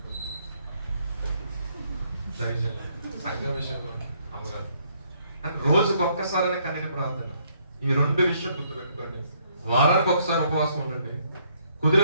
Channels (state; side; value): inverted; both; correlation -0.69